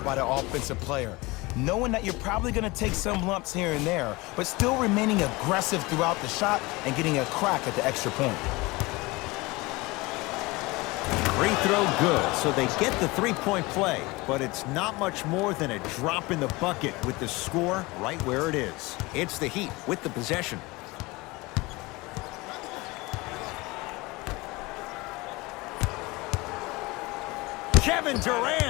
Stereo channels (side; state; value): right; quieter; 23.0 dB